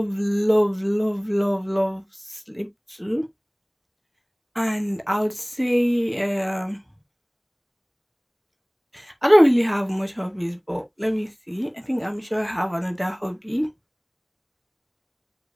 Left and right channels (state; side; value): identical; both; correlation 1.00